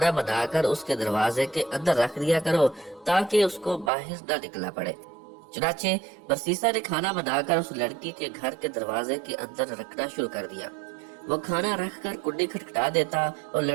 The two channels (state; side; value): drops out; left; at 3.9 s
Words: بنا کر اس کے دروازے کے اندر رکھ دیا کرو تاکہ اس کو باہر نہ نکلنا پڑے۔ چنانچہ برسیسا نے کھانا بنا کر اس لڑکی کے گھر کے دروازے کے اندر رکھنا شروع کر دیا۔ وہ کھانا رکھ کر کنڈی کھٹکھٹا دیتا اور